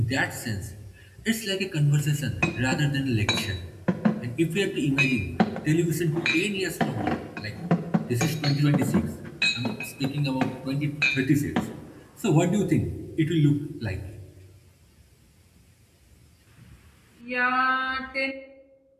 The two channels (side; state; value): both; identical; correlation 1.00